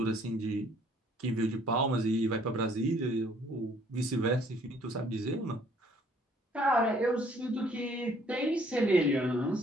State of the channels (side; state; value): both; normal; correlation 0.61